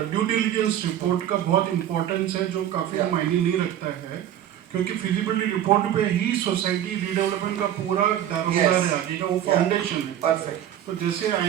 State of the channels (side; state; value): left; quieter; 11.1 dB